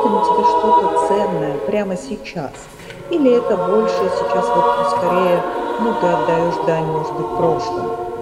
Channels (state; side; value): identical; both; correlation 1.00